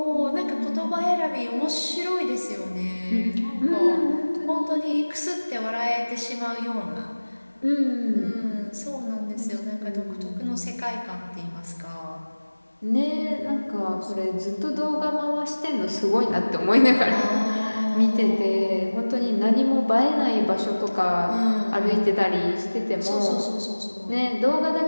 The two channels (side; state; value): both; inverted; correlation -1.00